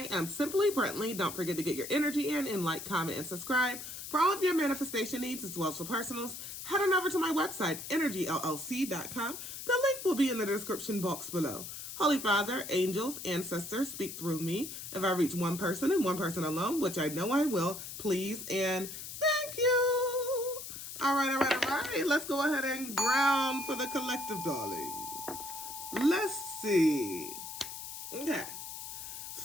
am Simply Brentley. Don't forget to get your energy in and like, comment, and subscribe. For all of your manifestation needs as well as for personals, head on over to my website, energyllc.com. The link will be in the description box below. Holy Father, angels, ancestors, speak through me. If I reach one person and one person alone, which I know I will, please and thank you. All right. Let's go ahead and ground for the collective, darling. Let's see. Okay.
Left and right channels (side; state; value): left; noise; hiss, 9 dB below the sound